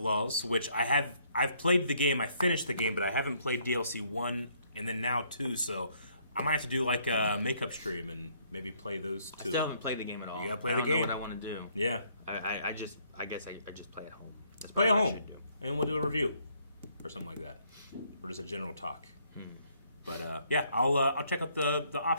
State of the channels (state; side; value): inverted; both; correlation -0.67